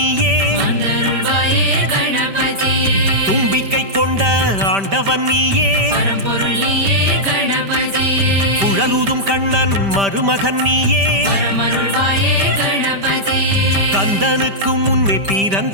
வந்தருள்வாயே கணபதியே தும்பிக்கை கொண்ட ஆண்டவன் நீயே பரம்பொருளியே கணபதியே குழலூதும் கண்ணன் மருமகன் நீயே பரமருள்வாயே கணபதியே கந்தனுக்கு முன்னே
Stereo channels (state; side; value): late; left; 5.1 ms